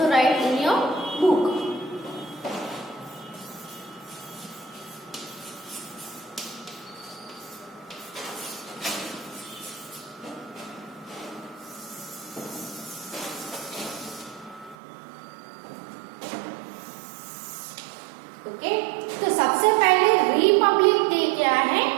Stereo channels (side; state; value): left; drops out; at 14.8 s